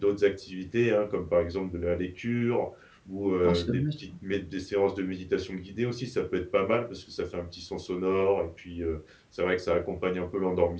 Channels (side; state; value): both; identical; correlation 1.00